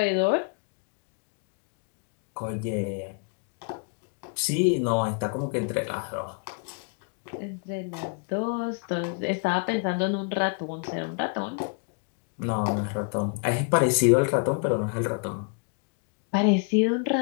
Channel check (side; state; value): right; quieter; 37.8 dB